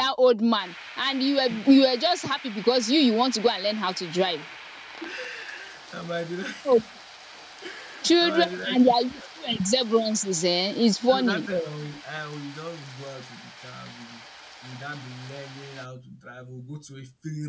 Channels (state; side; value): identical; both; correlation 1.00